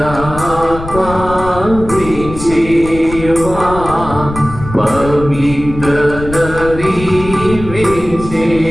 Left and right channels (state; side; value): noise; left; rumble, 11 dB below the sound